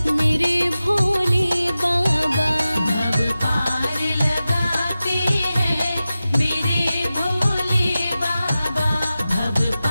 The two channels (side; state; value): both; inverted; correlation -0.94